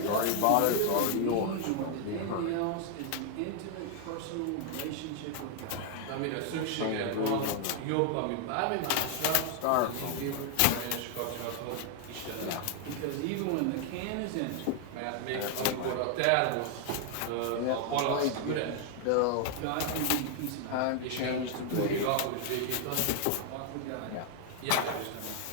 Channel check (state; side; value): different; both; correlation 0.00